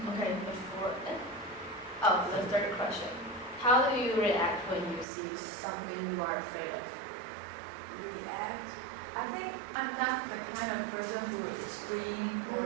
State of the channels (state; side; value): drops out; left; at 5.1 s